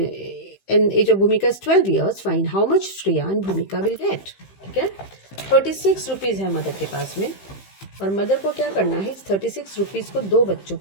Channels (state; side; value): late; right; 15 ms